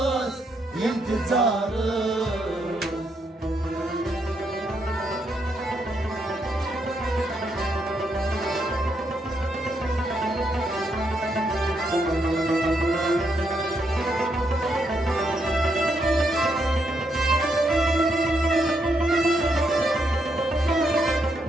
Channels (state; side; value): normal; both; correlation 0.78